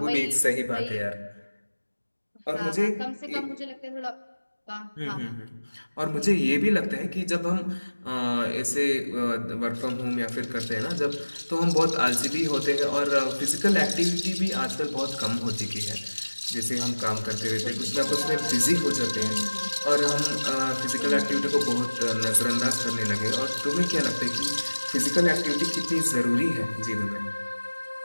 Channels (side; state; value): both; inverted; correlation -1.00